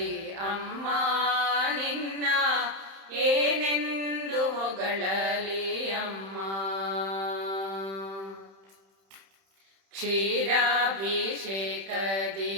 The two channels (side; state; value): left; late; 31 ms